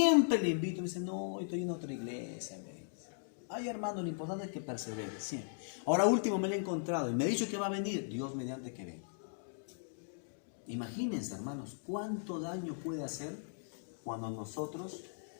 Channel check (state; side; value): silent; right; digital silence